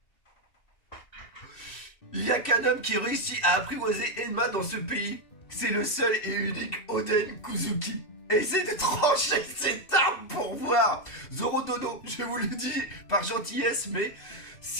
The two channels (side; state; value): right; late; 2.7 ms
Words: Il n'y a qu'un homme qui réussit à apprivoiser Enma dans ce pays. C'est le seul et unique Oden Kuzuki. Essaye de trancher cette arme pour voir. Zoro Dono, je vous le dis par gentillesse, mais